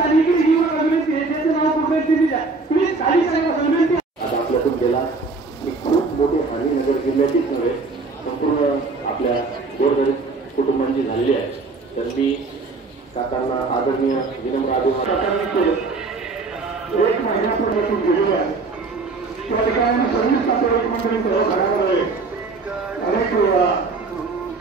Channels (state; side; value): quieter; left; 3.9 dB